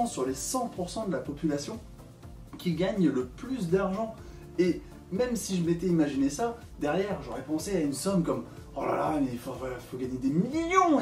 sur les 100% de la population qui gagne le plus d'argent. Et même si je m'étais imaginé ça, derrière j'aurais pensé à une somme comme oh là là, mais il faut gagner des millions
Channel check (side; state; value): both; identical; correlation 1.00